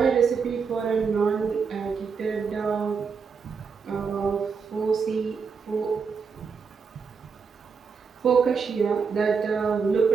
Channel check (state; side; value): quieter; left; 5.7 dB